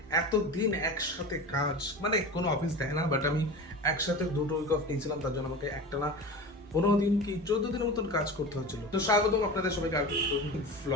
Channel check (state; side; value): normal; both; correlation 0.31